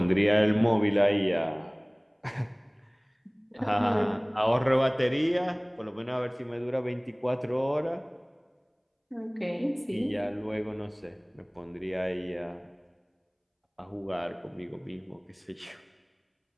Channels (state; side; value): identical; both; correlation 1.00